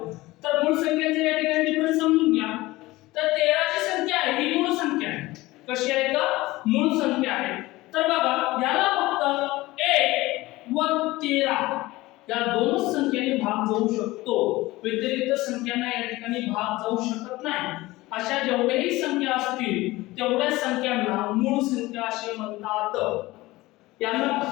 तर मूळ संख्येचे या ठिकाणी डिफरन्स समजून घ्या। तर 13 ची संख्या आहे ही मूळ संख्या आहे, कशी आहे का? मूळ संख्या आहे। तर बघा, याला फक्त 1 व 13 या दोनच संख्येने भाग जाऊ शकतो, व्यतिरिक्त संख्यांना या ठिकाणी भाग जाऊ शकत नाही। अशा जेवढ्याही संख्या असतील तेवढ्या संख्यांना मूळ संख्या असे म्हणतात। यांना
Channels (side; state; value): right; quieter; 19.3 dB